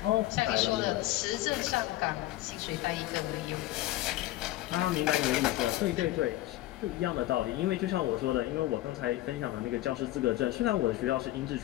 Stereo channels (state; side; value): quieter; right; 16.2 dB